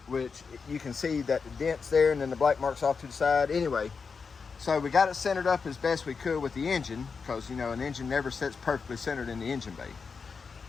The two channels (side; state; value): right; quieter; 5.3 dB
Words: which you can see that the dents there and then the black marks off to the side. Anyway, So we got it centered up as best we could with the engine, because you know an engine never sits perfectly centered in the engine bay.